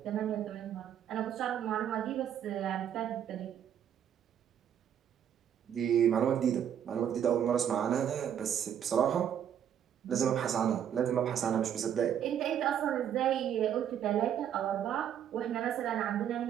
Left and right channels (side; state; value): left; quieter; 9.4 dB